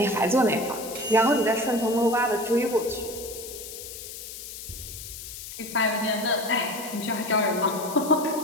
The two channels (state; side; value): noise; left; hiss, 11 dB below the sound